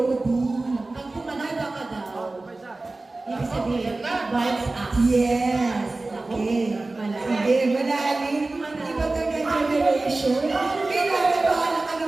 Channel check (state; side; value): quieter; left; 3.2 dB